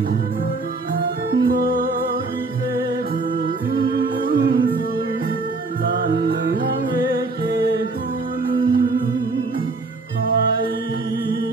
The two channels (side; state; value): left; quieter; 3.5 dB